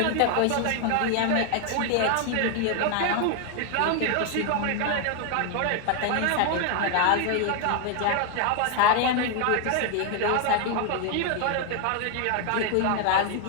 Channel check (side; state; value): both; different; correlation 0.00